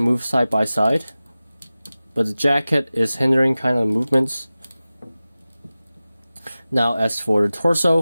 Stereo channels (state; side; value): inverted; both; correlation -0.96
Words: move side by side, but the jacket is hindering kind of movements. Now as for the